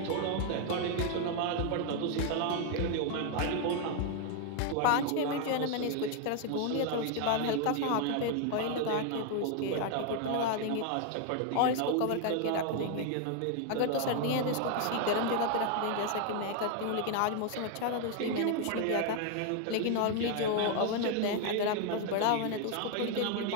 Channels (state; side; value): different; both; correlation 0.00